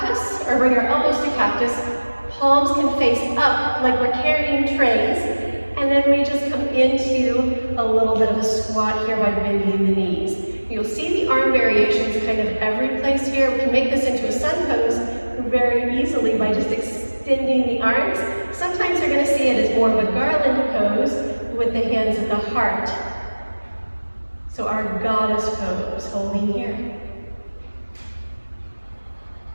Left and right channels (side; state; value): both; inverted; correlation -1.00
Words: or bring our elbows to cactus. Palms can face up like we're carrying trays, and then we just come into a little bit of a squat here by bending the knees. You'll see the arm variations kind of every place here. We can make this into a sun pose very easily by just extending the arms. Sometimes you're going to see it as more of a garland pose with the hands at the heart. So our goddess pose, holding here.